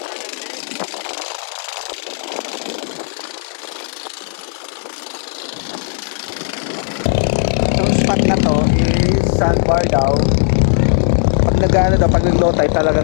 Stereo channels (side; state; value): right; silent; 60 dB below the other